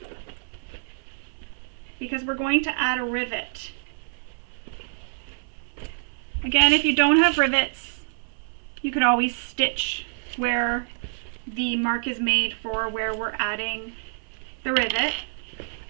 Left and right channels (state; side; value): silent; left; 60 dB below the other